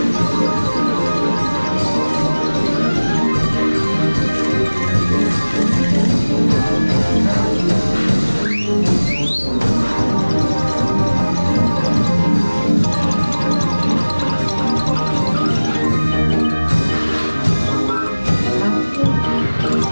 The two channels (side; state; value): both; inverted; correlation -1.00